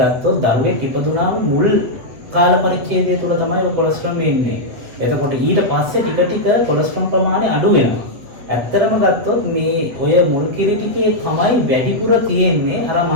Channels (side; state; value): left; late; 8.0 ms